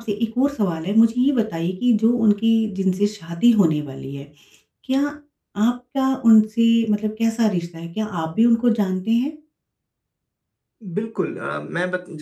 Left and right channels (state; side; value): identical; both; correlation 1.00